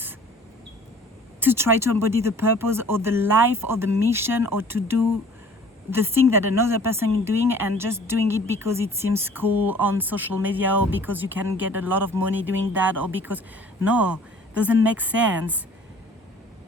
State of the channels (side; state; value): both; normal; correlation 0.50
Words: to try to embody the purpose or the life or the mission, or to do the thing that another person is doing and just doing it because it seems cool on social media, or because you can get a lot of money doing that, or because, no, doesn't make sense.